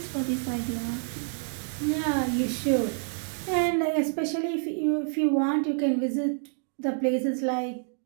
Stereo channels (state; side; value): silent; left; digital silence